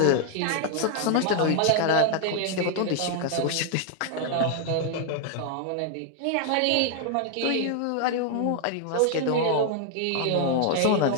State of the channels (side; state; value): both; different; correlation 0.00